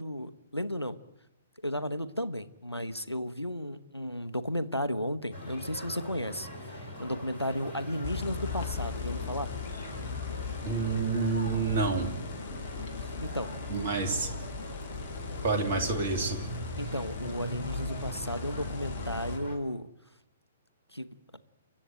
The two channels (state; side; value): inverted; both; correlation -0.50